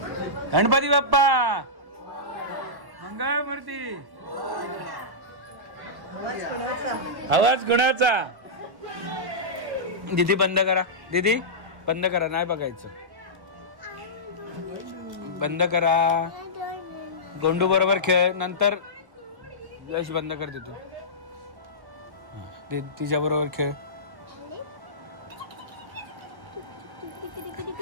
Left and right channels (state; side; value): late; left; 1.1 ms